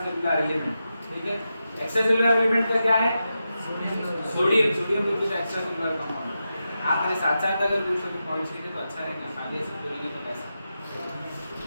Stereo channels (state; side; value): inverted; both; correlation -0.89